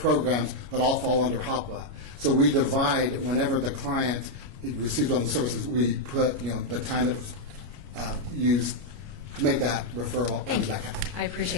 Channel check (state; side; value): late; left; 29 ms